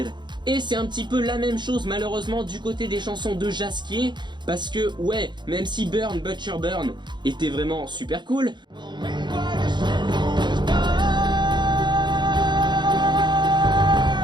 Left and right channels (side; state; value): left; late; 0.22 ms